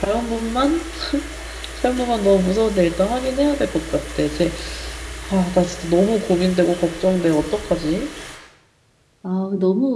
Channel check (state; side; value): identical; both; correlation 1.00